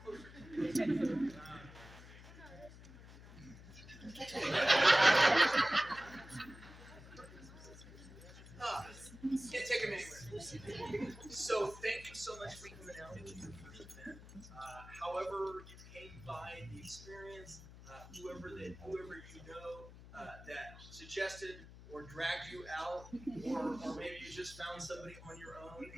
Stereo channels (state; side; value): noise; left; hum, 16 dB below the sound